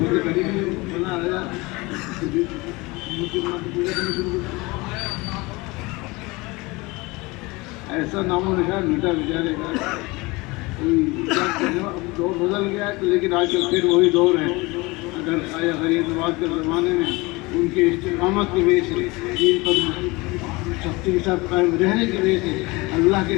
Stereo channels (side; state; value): right; quieter; 23.9 dB